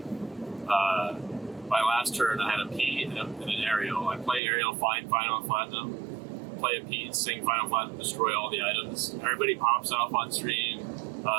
My last turn, I had a P and an Aerial. I play Aerial, find Final Platinum. Play a P, sing Final Platinum, destroy all the items. Everybody pops off on stream.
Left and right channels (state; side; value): drops out; left; at 4.4 s